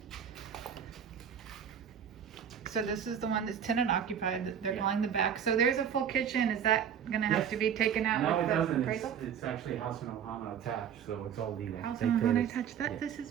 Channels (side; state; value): left; quieter; 8.3 dB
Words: So this is the one that's tenant occupied that they're calling the back. So there's a full kitchen. Is that gonna have Yes. to be taken out No, with it the doesn't. appraisal? It's actually House and Ohana attached, so it's all legal. House They and pay Ohana the- touch that. yeah. This is